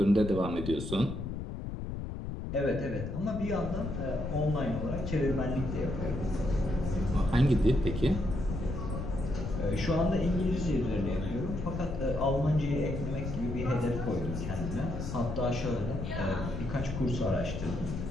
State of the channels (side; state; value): left; noise; rumble, 5 dB below the sound